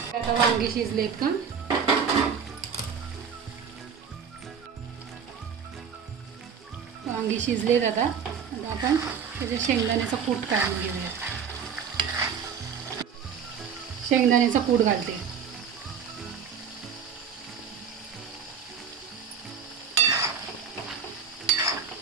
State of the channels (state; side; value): quieter; left; 6.9 dB